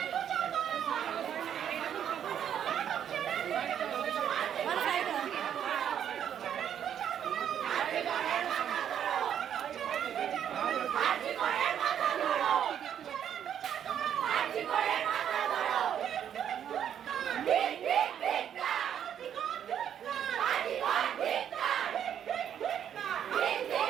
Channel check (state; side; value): quieter; left; 9.3 dB